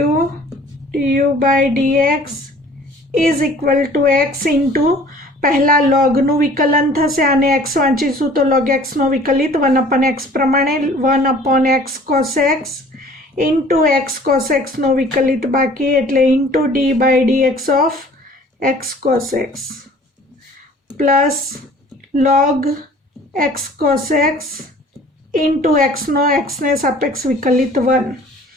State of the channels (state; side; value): normal; both; correlation 0.50